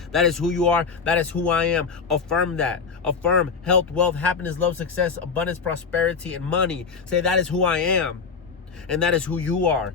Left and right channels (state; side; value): quieter; right; 5.5 dB